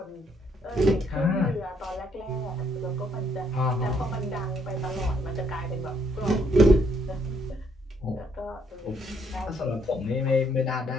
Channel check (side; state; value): both; normal; correlation 0.70